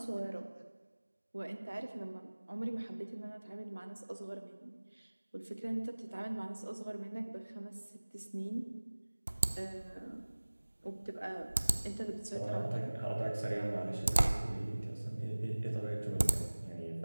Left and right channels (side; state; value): both; inverted; correlation -1.00